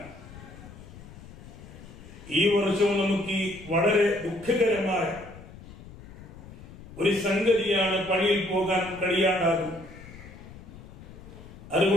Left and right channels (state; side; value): noise; left; rumble, 17 dB below the sound